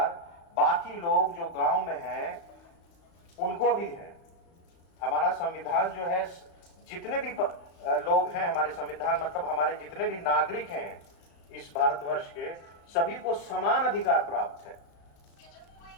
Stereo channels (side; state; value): right; late; 35 ms